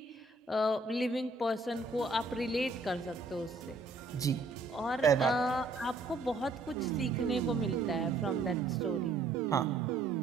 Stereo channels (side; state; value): left; quieter; 3.3 dB